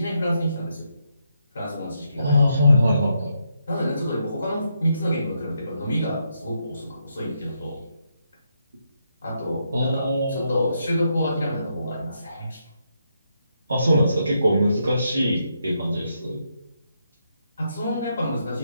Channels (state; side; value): inverted; both; correlation -0.79